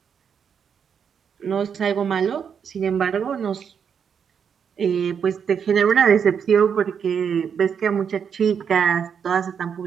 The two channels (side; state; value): left; quieter; 7.2 dB